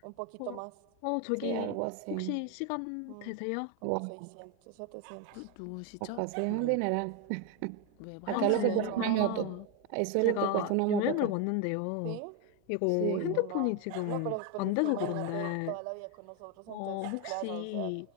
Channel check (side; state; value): both; different; correlation 0.02